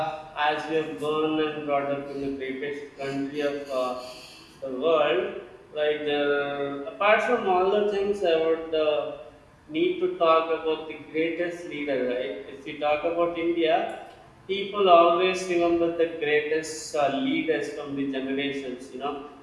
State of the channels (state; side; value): identical; both; correlation 1.00